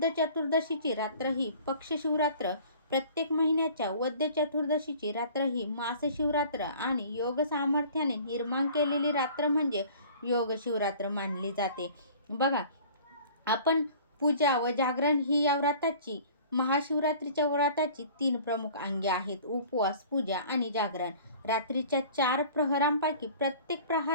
चतुर्दशीची रात्र ही पक्ष शिवरात्र, प्रत्येक महिन्याच्या वद्य चतुर्दशीची रात्र ही मास शिवरात्र आणि योग सामर्थ्याने निर्माण केलेली रात्र म्हणजे योग शिवरात्र मानली जाते. बघा, आपण पूजा व जागरण ही या व्रताची महाशिवरात्रीच्या व्रताची 3 प्रमुख अंगे आहेत: उपवास, पूजा आणि जागरण. रात्रीच्या 4 प्रहरांपैकी प्रत्येक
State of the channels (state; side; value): inverted; both; correlation -0.47